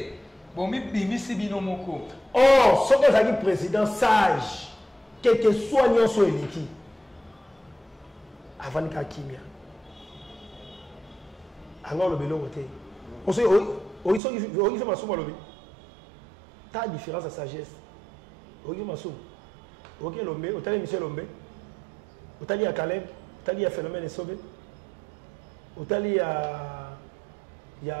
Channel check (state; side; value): drops out; left; at 14.2 s